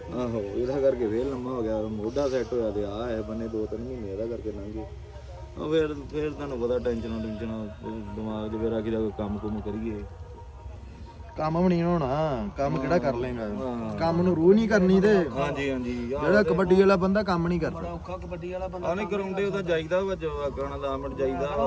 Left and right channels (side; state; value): both; identical; correlation 1.00